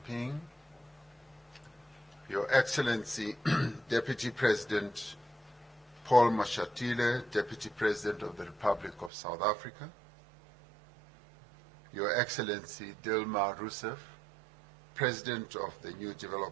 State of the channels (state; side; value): drops out; left; at 9.1 s